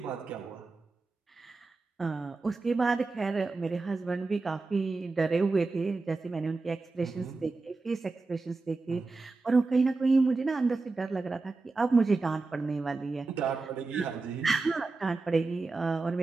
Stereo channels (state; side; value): quieter; left; 3.7 dB